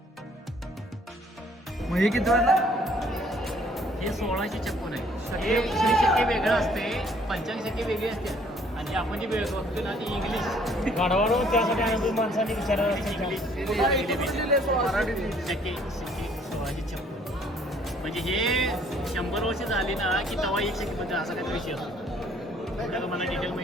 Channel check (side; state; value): both; normal; correlation 0.61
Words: मग हे किती वाजला. हे 1656 आहे. हे शक्के वेगळं असते, 85 वेगळी असते. आणि आपण जी वेळ बघतो ना ती इंग्लिश गाढवावर त्यासाठी अनुभव माणसांनी विचारायला इंग्लिश शक्के 1656 म्हणजे हे 100 वर्ष झाली ना की तवा 1 शक्केबद्दल असा काहीतरी विषय असतो. त्याला मला डिटेल